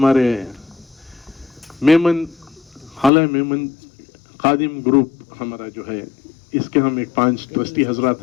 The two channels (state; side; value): drops out; right; at 3.1 s